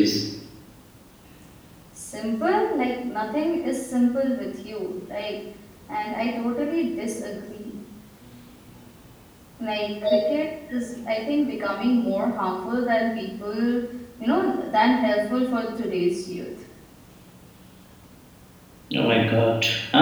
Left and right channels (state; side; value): identical; both; correlation 1.00